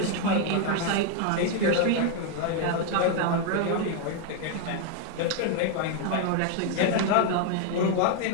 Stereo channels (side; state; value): both; different; correlation 0.00